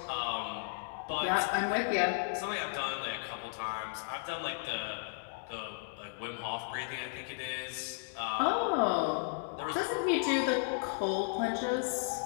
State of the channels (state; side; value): silent; right; 55 dB below the other